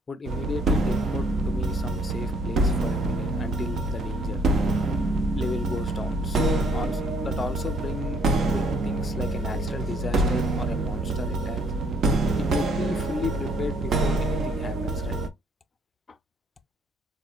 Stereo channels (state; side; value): normal; both; correlation 0.63